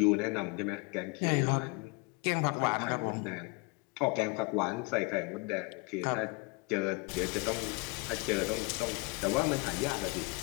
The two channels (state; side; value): quieter; right; 28.3 dB